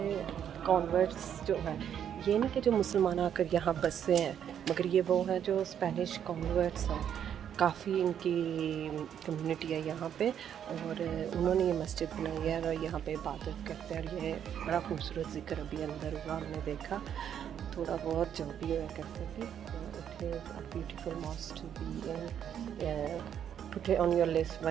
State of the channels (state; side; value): quieter; left; 9.1 dB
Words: कॉन्वर्ट्स जो है, ये नहीं कि जो मुसलमान आकर यहाँ बसे हैं, मगर ये वो हैं जो स्पेनिश कॉन्वर्ट्स हैं। काफ़ी इनकी कम्युनिटी है यहाँ पे, और उन्होंने ये मस्जिद बनाई है और यहाँ पे इबादत करते हैं। और ये बड़ा खूबसूरत ज़िक्र अभी अंदर हुआ, हमने देखा थोड़ा बहुत जो भी हुआ करते थे। It is a beautiful mosque to be in, put it on your list